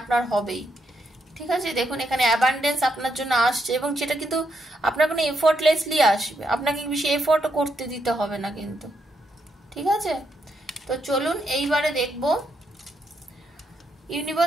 হবেই। ঠিক আছে, দেখুন এখানে অ্যাবান্ডেন্স আপনার জন্য আসছে, এবং সেটা কিন্তু আপনার কোনো এফোর্টলেসলি আসবে, আপনাকে বেশি এফোর্টও করতে দিতে হবে না কিন্তু। ঠিক আছে, তো চলুন এইবারে দেখব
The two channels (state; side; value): normal; both; correlation 0.79